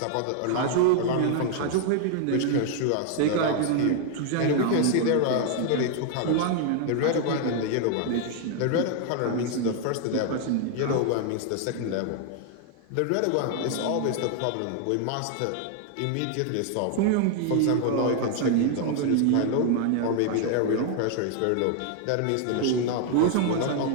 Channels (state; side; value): different; both; correlation 0.00